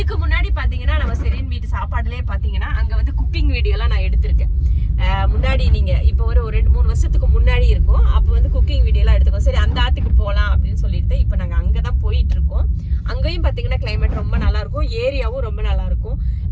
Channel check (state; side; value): identical; both; correlation 1.00